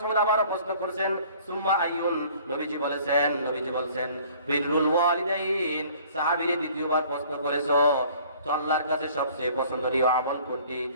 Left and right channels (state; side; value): inverted; both; correlation -0.53